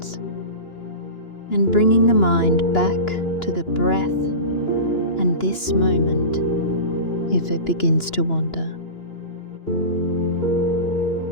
and bringing the mind back to the breath and this moment if it begins to wander.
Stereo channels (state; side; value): late; right; 2.9 ms